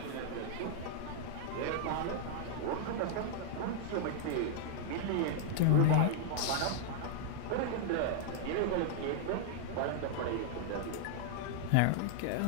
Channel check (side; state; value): both; different; correlation -0.01